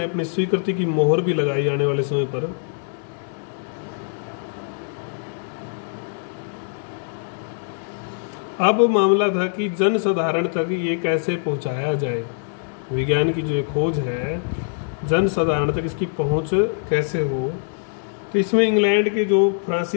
अपनी स्वीकृति की मोहर भी लगाई आने वाले समय पर। अब मामला था कि जन साधारण तक ये कैसे पहुंचाया जाए। विज्ञान की जो खोज है जन साधारण तक इसकी पहुंच कैसे हो। तो इसमें इंग्लैंड के जो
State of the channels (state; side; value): silent; right; 60 dB below the other